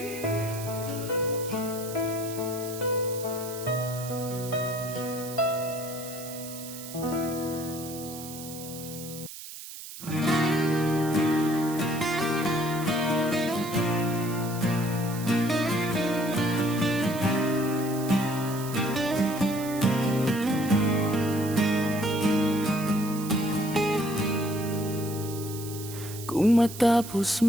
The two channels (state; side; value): noise; right; hiss, 12 dB below the sound